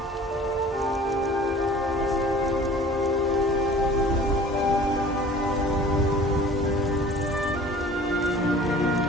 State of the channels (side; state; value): both; normal; correlation 0.46